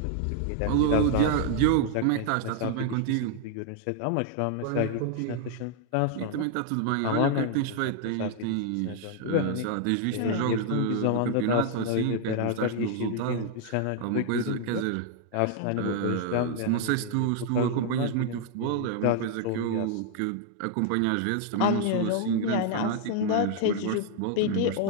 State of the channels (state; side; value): different; both; correlation 0.00